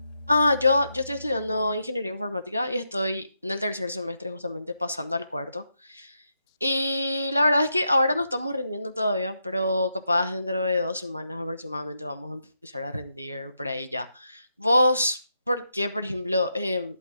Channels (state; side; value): inverted; both; correlation -0.83